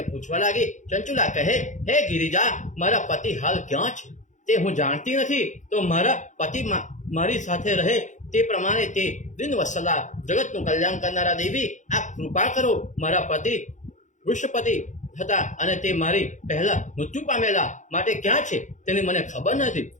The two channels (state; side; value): late; right; 0.35 ms